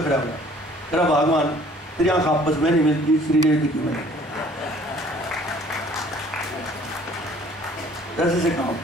हुआ, तेरा भगवान तेरी आँख आपस में नहीं मिलती, श्रीदेवी की मिले कैसे से काम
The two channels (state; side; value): normal; both; correlation 0.55